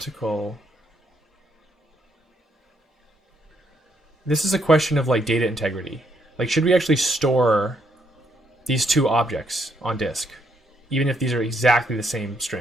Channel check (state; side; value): normal; both; correlation 0.74